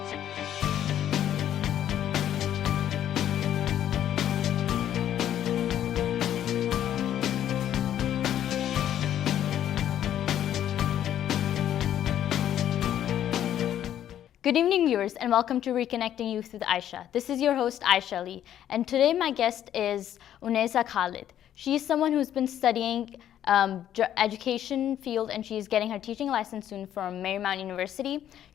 Good evening, viewers, and welcome to Reconnecting Youth with Aisha. This is your host, Aisha Ali, and today my guest is Unaiza Khalid. She's someone who's been studying education field, and she's getting her teaching license soon from Marymount University.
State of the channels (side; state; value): right; quieter; 10.9 dB